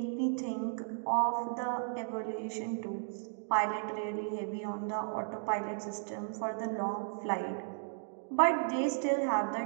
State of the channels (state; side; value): silent; left; digital silence